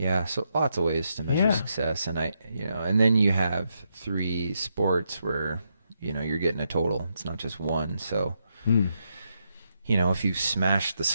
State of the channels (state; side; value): inverted; both; correlation -0.81